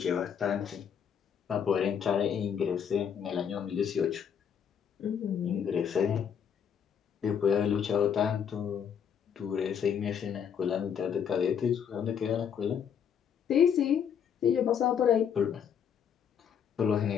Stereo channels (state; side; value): quieter; right; 7.9 dB